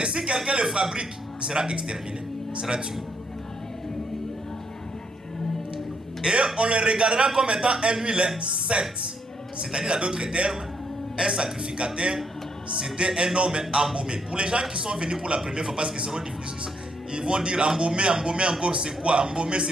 si quelqu'un le fabrique, il sera exterminé, il sera tué. Et on le regardera comme étant un huile sainte. C'est-à-dire, à d'autres termes, un sacrificateur, c'était un homme embaumé. Pour les gens qui sont venus pour la première fois, parce qu'ils seront difficiles, ils vont dire embaumer encore c'est quoi? Embaumer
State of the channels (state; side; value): normal; both; correlation 0.74